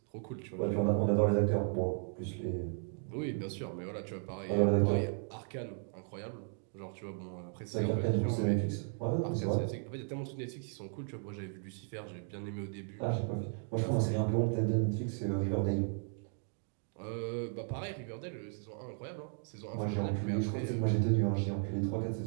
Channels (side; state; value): left; silent; 54 dB below the other